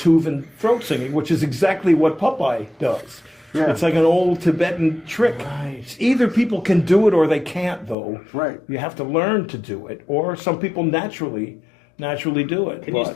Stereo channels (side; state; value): right; drops out; at 8.0 s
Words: throat singing, which is exactly what Popeye does. Yeah. It's like an old Tibetan trick. Right. Either people can do it or they can't, though. Right. You have to learn to do it, or some people naturally do it. Can you